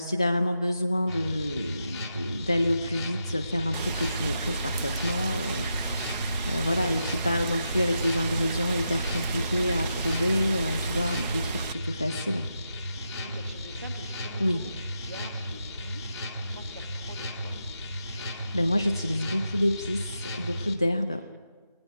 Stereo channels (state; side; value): inverted; both; correlation -0.85